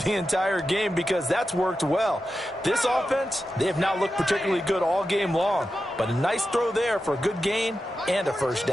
the entire game, because that's worked well. This offense, they have not looked particularly good all game long, but a nice throw there for a good gain and a 1st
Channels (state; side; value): normal; both; correlation 0.91